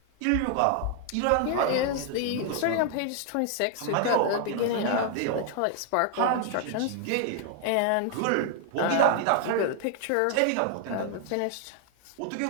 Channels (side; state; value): both; different; correlation 0.00